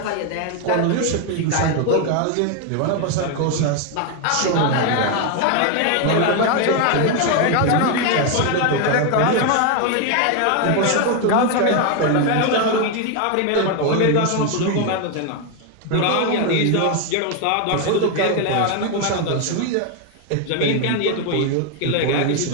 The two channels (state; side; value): different; both; correlation 0.01